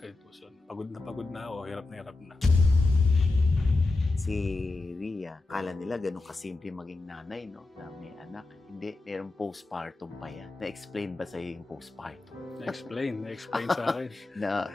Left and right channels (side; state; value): right; quieter; 3.2 dB